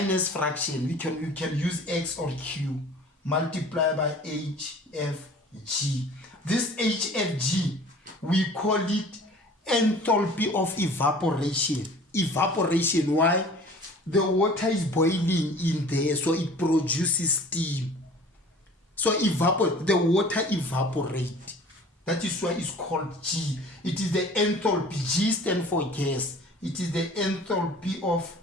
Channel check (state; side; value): normal; both; correlation 0.46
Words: fraction. We can use X or Q multiplied by HFG. This HFG, we call it enthalpy of evaporation. Evaporation, why? The water is boiling in there, so it produces steam. So the water evaporates. That is why it's called G. It is the enthalpy. G stands for gas. It is the enthalpy of